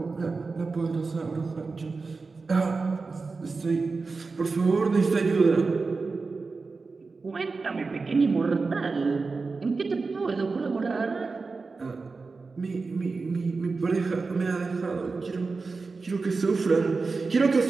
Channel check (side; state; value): left; quieter; 4.2 dB